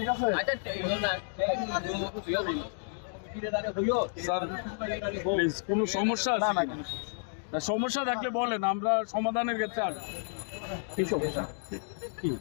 আছে? স্যার প্লিজ কোনো সমস্যা আছে নাকি? সমস্যা থাকলে বলেন, আমরা সমাধানের ক্ষেত্রে আসবো। কি সমস্যা কি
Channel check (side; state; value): right; silent; digital silence